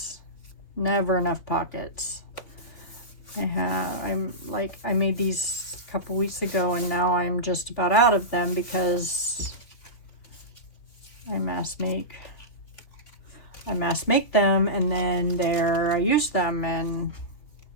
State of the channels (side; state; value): right; late; 3.7 ms